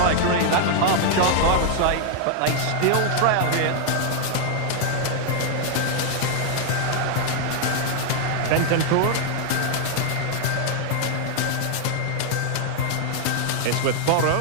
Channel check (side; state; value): both; different; correlation 0.00